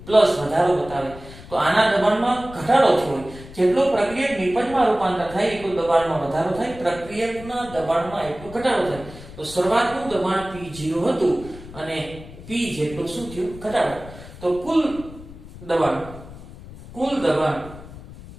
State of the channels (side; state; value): left; noise; rumble, 16 dB below the sound